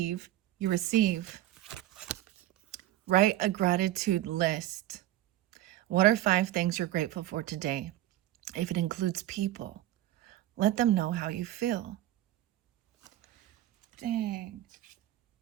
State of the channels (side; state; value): left; quieter; 14.0 dB